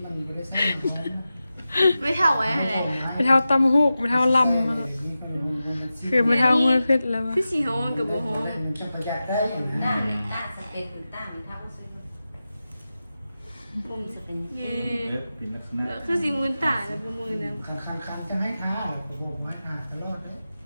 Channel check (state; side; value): inverted; both; correlation -0.93